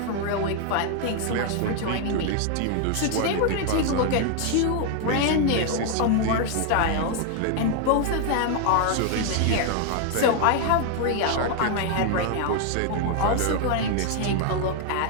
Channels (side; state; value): both; different; correlation 0.00